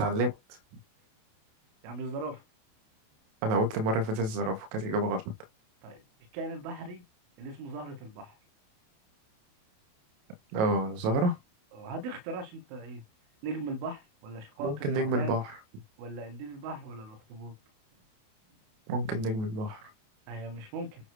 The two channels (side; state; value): left; late; 28 ms